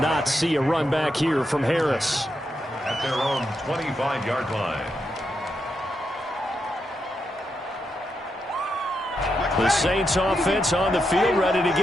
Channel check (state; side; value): normal; both; correlation 0.84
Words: see a run back here from Harris. At their own 25-yard line. The Saints offense on the field, ready to